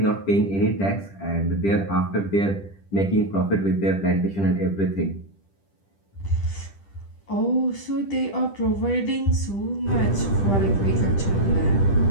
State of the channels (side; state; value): right; late; 10 ms